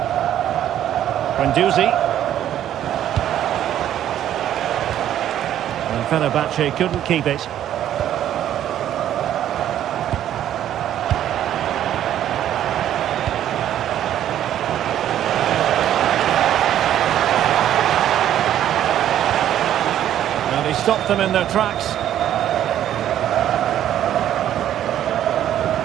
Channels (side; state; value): left; quieter; 11.3 dB